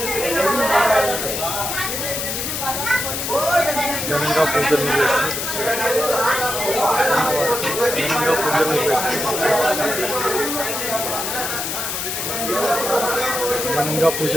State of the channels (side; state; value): left; noise; hiss, 3 dB below the sound